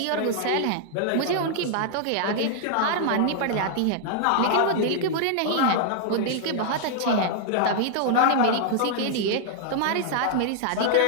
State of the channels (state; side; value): different; both; correlation -0.01